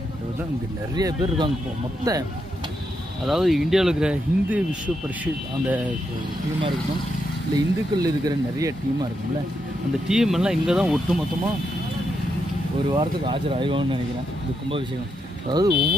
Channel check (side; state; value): both; normal; correlation 0.82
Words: தான் இங்கே நிறைய பேர் இருக்காங்க. இப்போ மொத்த, அதாவது இந்தியாவில் இருக்கிற ஹிந்து விஸ்வ பரிஷத் அந்த டீமாக இருக்கணும், இல்லை இந்துக்கள் இருக்கிற நிறைய டீமாக இருக்கும்ல, அந்த டீம் எல்லாம் இங்கே தான் ஒட்டு மொத்தமாக ஒரு வாரத்துக்கு ஆஜர் ஆகிடுவாங்கன்னு நினைக்கிறேன். இந்த கும்பாபிஷேகம், அதாவது